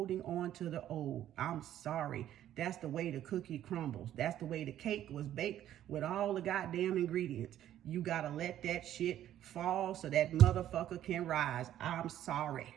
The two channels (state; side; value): quieter; left; 11.9 dB